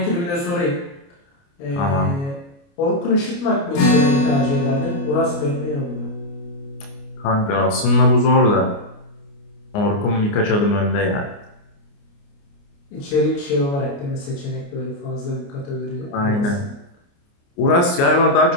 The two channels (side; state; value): right; late; 29 ms